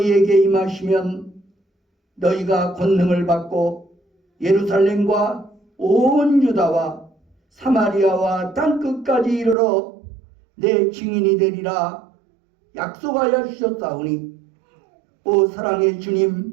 임하시면 너희가 권능을 받고 예루살렘과 온 유다와 사마리아와 땅끝까지 이르러 내 증인이 되리라 약속하여 주셨사오니 오 사랑의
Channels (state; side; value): drops out; left; at 9.6 s